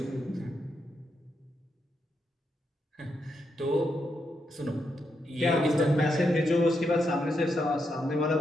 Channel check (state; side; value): normal; both; correlation 0.82